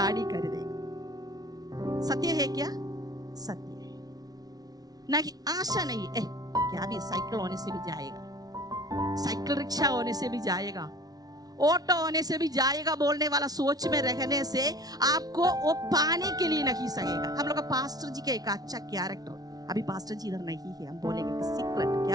खरीदेगा। सत्य है क्या? सत्य है ना कि आशा नहीं है। क्या भी साइकिल होने से भी जाएगा, साइकिल रिक्शा होने से भी जाएगा, ऑटो होने से भी जाएगा बोलने वाला सोच में रहने से आपको वो पाने के लिए नहीं सकेगा। हम लोग का पास्टर जी का एक अच्छा कैरेक्टर, अभी पास्टर जी इधर नहीं है, हम बोलेंगे कि सीक्रेट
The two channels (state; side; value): late; left; 0.19 ms